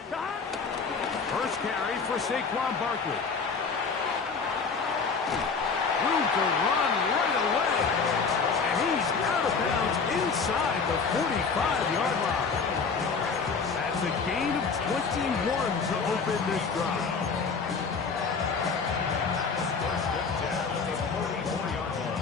First carry for Saquon Barkley. Room to run right away. And he's out of bounds inside the 45-yard line. That's a gain of 21 to open this drive.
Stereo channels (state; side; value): quieter; right; 5.1 dB